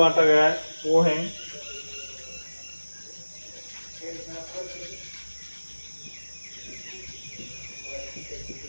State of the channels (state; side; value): inverted; both; correlation -1.00